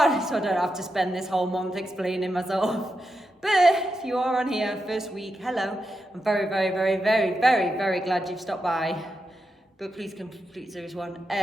So I don't have to spend this whole month explaining myself. But if you are on here, first week, hello. I'm very, very, very, very, very, very glad you've stopped by. But please complete series 1.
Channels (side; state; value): both; normal; correlation 0.87